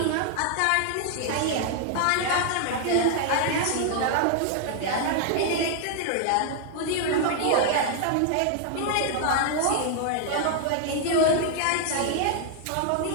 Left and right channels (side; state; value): both; different; correlation 0.00